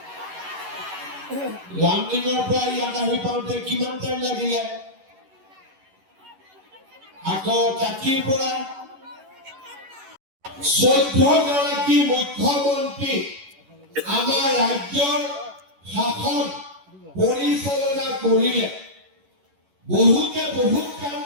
লামডিঙৰ পৰা ইয়াত আহি পাওঁতে কিমান টাইম লাগিলে আকৌ কাকিৰ পৰা 14 গৰাকী মুখ্যমন্ত্ৰী আমাৰ ৰাজ্যৰ শাসন পৰিচালনা কৰিলে বহুতে বহুত কাম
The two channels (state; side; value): late; left; 11 ms